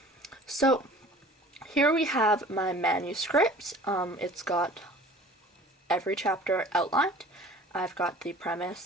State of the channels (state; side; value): normal; both; correlation 0.46